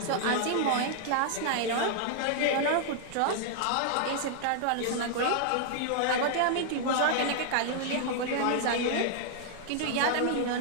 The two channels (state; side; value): different; both; correlation -0.01